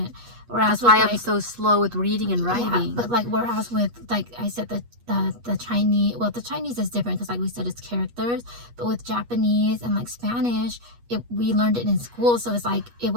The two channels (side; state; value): left; late; 8.3 ms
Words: That's why I'm so slow with reading and writing. But like, whereas with, like I said, the Chinese, well, the Chinese is different because like we said, it's characters. But with Japanese and like Spanish, we learned it in school. So it's like, it